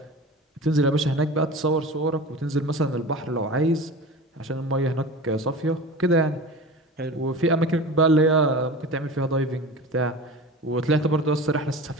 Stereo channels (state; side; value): normal; both; correlation 0.34